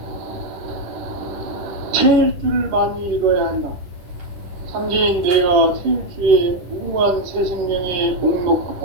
태일주를 많이 읽어야 한다. 상제인 내가 태일주의 무궁한 새 생명의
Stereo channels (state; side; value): late; left; 11 ms